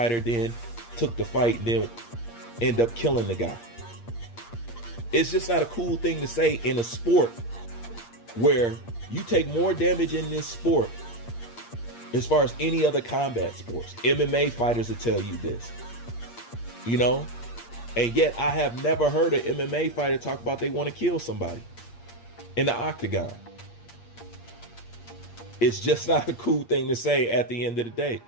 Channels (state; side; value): late; right; 8.6 ms